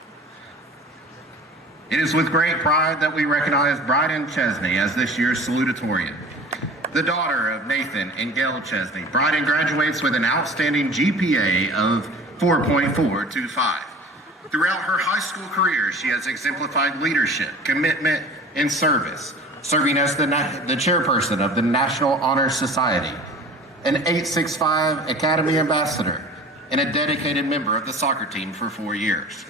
It is with great pride that we recognize Bryden Chesney as this year's salutatorian. The daughter of Nathan and Gail Chesney, Bryden graduates with an outstanding GPA of 4.425. Throughout her high school career, she has exemplified leadership, commitment, and service, serving as the chairperson of the National Honor Society, an 865 Academy Ambassador, and a dedicated member of the soccer team for 4 years.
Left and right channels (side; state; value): both; normal; correlation 0.42